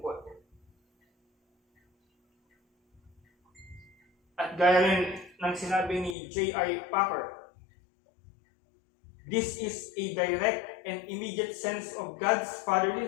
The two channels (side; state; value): right; drops out; at 6.2 s